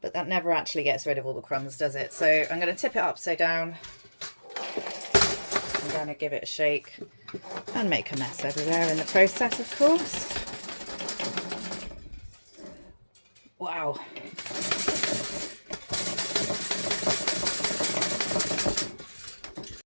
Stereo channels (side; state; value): both; inverted; correlation -1.00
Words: But that never actually gets rid of all the crumbs, does it? So I'm going to tip it upside down. I'm going to give it a shake and make a mess everywhere in the process, of course. Wow.